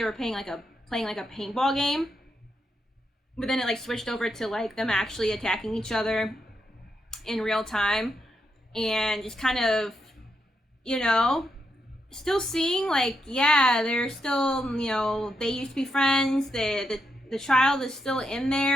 were playing like a paintball game. But then it like switched over to like them actually attacking each other in real time, and just kind of, you know, still seeing like, yeah, they're still, you know, they used to be friends. The child is still in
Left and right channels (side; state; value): both; normal; correlation 0.82